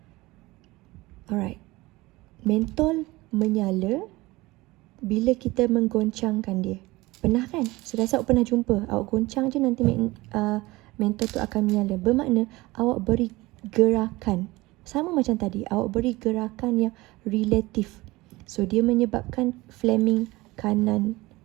Alright. Mentol menyala bila kita menggoncangkan dia. Pernah kan? Saya rasa awak pernah jumpa. Awak goncang je nanti mentol tu akan menyala. Bermakna awak beri gerakan. Sama macam tadi. Awak beri gerakan yang relatif. So, dia menyebabkan Fleming kanan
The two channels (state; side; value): quieter; left; 20.6 dB